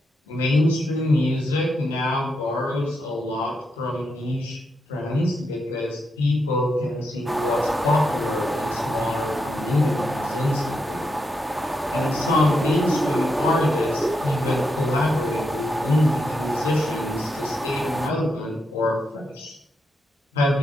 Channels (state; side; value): normal; both; correlation 0.83